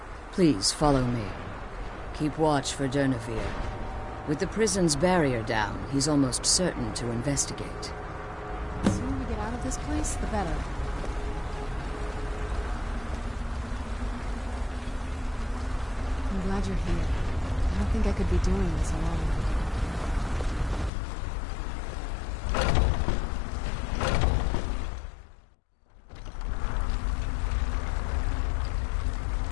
Please follow me. Keep watch for Durnevere. With the prison's barrier down, he's almost certain to investigate. The sooner we get out of this place, the better. I'm glad you're here. I don't think I could be doing this alone.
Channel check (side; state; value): right; drops out; at 20.9 s